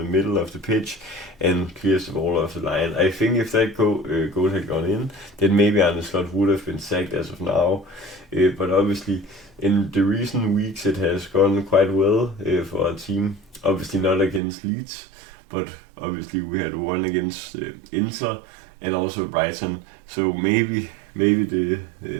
middle of the pitch and clears the ball off the line. I think if that goal had gone in, then maybe Arne would have been sacked as of now. But obviously, in the recent weeks, it has gone quite well for our team. Obviously not against Leeds, but obviously we had one against Inter and also Brighton. So maybe the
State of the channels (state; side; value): drops out; left; at 14.4 s